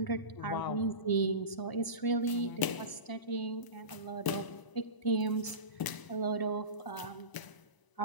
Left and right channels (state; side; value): late; right; 1.0 ms